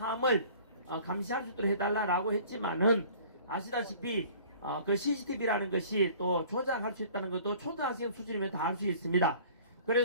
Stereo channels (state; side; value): inverted; both; correlation -0.49